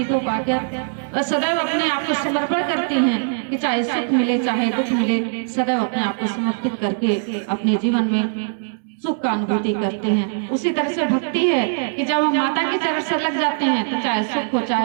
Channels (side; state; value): left; silent; digital silence